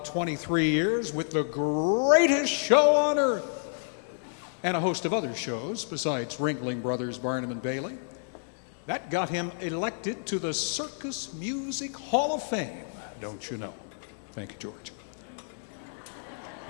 23 years with the greatest show on earth and a host of other shows besides Ringling Brothers, Barnum and Bailey. That got him elected to the Circus Music Hall of Fame, don't you know? Thank you, George.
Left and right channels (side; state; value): right; silent; digital silence